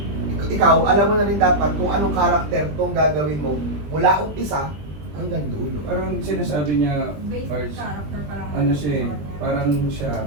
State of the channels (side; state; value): left; late; 20 ms